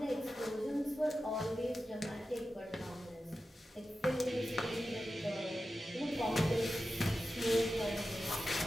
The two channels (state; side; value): normal; both; correlation 0.92